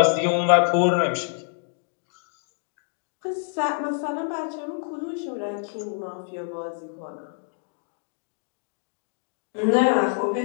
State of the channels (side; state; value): right; silent; digital silence